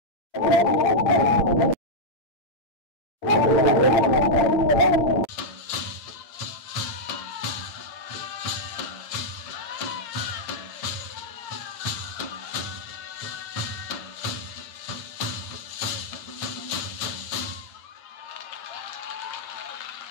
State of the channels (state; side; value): late; right; 8.6 ms